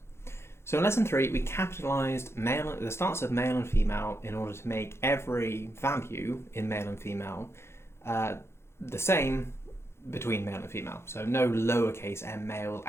So in lesson 3, we capitalized the starts of male and female in order to make every value in male and female the same between male and female. So no lowercase m males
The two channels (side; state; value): right; late; 0.12 ms